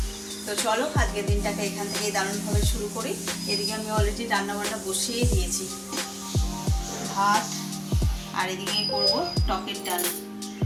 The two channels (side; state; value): both; identical; correlation 1.00